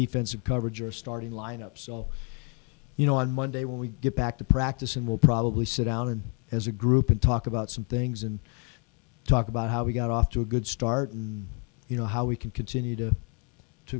coverage or a starting lineup. So, on Monday when we get back to practicing, we'll probably sit down and as a group and talk about some things, and talk about how we got off to a good start, and how we can continue to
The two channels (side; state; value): right; quieter; 38.5 dB